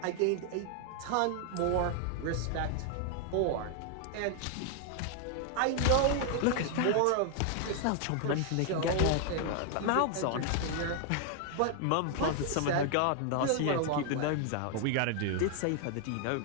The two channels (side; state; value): both; different; correlation 0.00